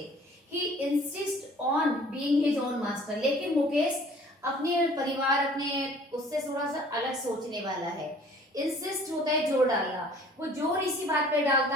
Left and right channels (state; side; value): normal; both; correlation 0.52